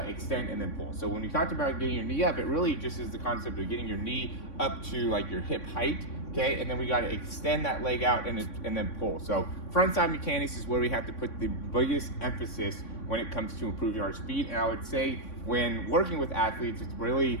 extend, and then pull. So when we talked about getting your knee up, it really just is the concept of getting your knee up to like your hip height, okay? And then we got to extend that leg out and then pull. So front side mechanics is where we have to put the biggest emphasis when it comes to improving our speed. And I would say when working with athletes, it's really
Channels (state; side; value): late; right; 3.6 ms